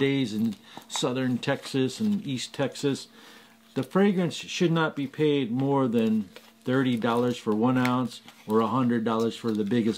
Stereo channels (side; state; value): both; identical; correlation 1.00